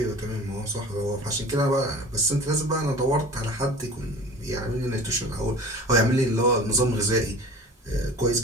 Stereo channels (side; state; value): both; normal; correlation 0.40